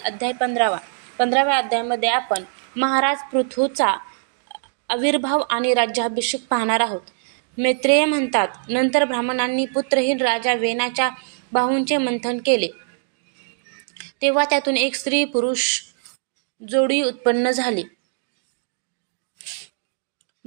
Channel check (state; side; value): silent; left; digital silence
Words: 15व्या अध्यायामध्ये आपण महाराज पृथूचा आविर्भाव आणि राज्याभिषेक पाहणार आहोत. मैत्रेय म्हणतात, नंतर ब्राह्मणांनी पुत्रहीन राजा वेनाच्या बाहूंचे मंथन केले, तेव्हा त्यातून एक स्त्री पुरुष जोडी उत्पन्न झाली.